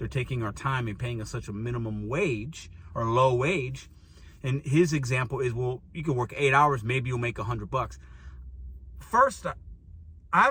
taking our time and paying us such a minimum wage or low wage. And his example is, well, you can work 8 hours, maybe you'll make $100. First,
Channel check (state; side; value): identical; both; correlation 1.00